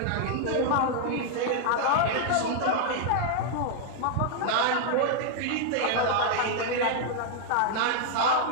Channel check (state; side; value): different; both; correlation 0.00